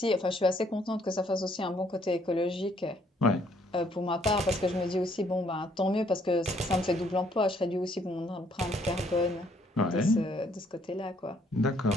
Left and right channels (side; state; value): both; normal; correlation 0.67